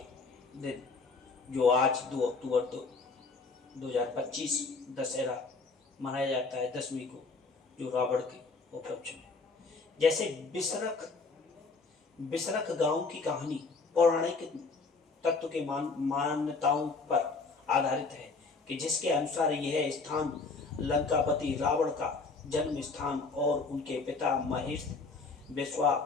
दिन, जो आज 2 अक्टूबर 2025 दशहरा मनाया जाता है 10वीं को, जो रावण के उपलक्ष्य में। जैसे बिसरख गांव की कहानी पौराणिक तत्व के मान्यताओं पर आधारित है कि जिसके अनुसार यह स्थान लंकापति रावण का जन्म स्थान और उनके पिता महेश विश्वा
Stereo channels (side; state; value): right; quieter; 4.1 dB